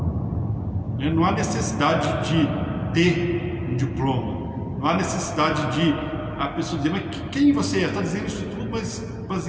Não há necessidade de ter um diploma, não há necessidade de a pessoa dizer, mas quem você é? Está dizendo isso tudo, mas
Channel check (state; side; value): identical; both; correlation 1.00